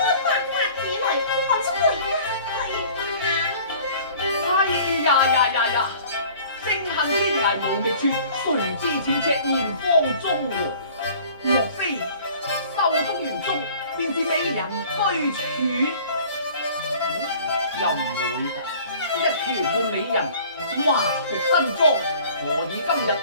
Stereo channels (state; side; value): inverted; both; correlation -0.49